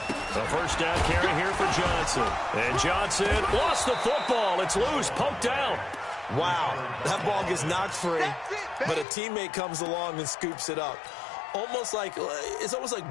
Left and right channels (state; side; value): drops out; right; at 9.1 s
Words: A 1st down carry here for Johnson. And Johnson lost the football. It's loose, poked out. Wow, that ball gets knocked free. but a teammate comes along and scoops it up. It's almost like